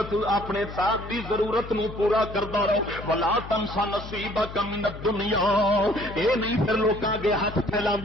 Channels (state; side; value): noise; left; hum, 12 dB below the sound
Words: اپنے ساتھ دی ضرورت نو پورا کردا رہو. ولا تنس نصیبک من الدنیا. اے نہیں پھر لوکاں اگے ہاتھ